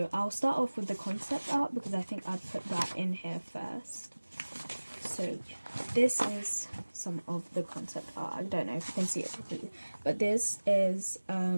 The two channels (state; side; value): inverted; both; correlation -1.00